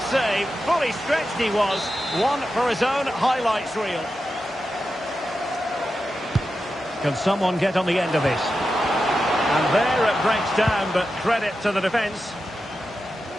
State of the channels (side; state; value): both; normal; correlation 0.90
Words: save. Fully stretched he was. One for his own highlights reel. Can someone get on the end of this? And there it breaks down, but credit to the defence.